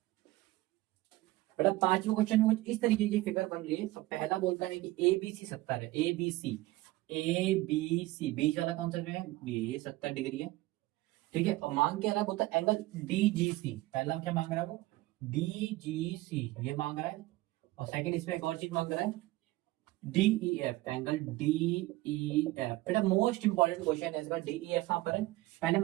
बेटा पांचवा क्वेश्चन में कुछ इस तरीके की फिगर बन रही है। अब पहला बोलता है कि ए बी सी 70 है। ए बी सी, ए बी सी, बीच वाला कौन सा जो है, ये 70 डिग्री है। ठीक है। और मांग क्या रहा है, बोलता है एंगल डी जी सी। पहला क्या मांग रहा है वो, डी जी सी ये मांग रहा है। और सेकंड इसमें एक और चीज मांग रहा है, D E F, angle D E F. बेटा मोस्ट इंपॉर्टेंट क्वेश्चन है इसका। डी ई एफ कहां पर है, पहले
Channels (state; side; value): quieter; left; 18.5 dB